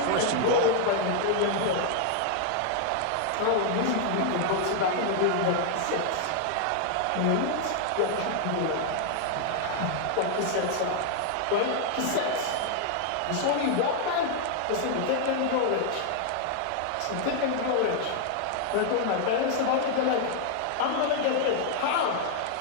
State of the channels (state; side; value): different; both; correlation 0.00